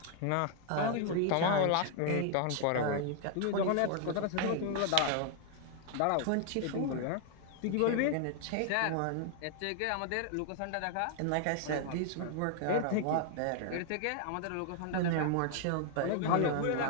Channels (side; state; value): both; different; correlation 0.00